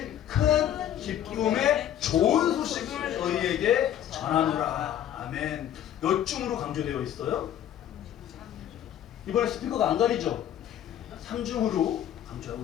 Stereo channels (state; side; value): quieter; right; 10.8 dB